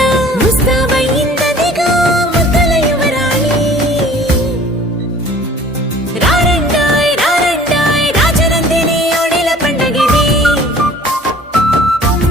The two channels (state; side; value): normal; both; correlation 0.49